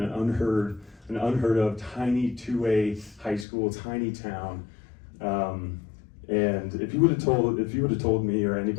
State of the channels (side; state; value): right; drops out; at 3.5 s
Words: an unheard of tiny 2A high school, tiny town. And if you would have told me or